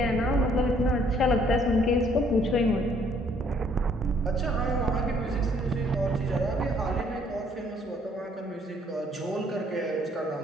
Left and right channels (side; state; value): both; normal; correlation 0.64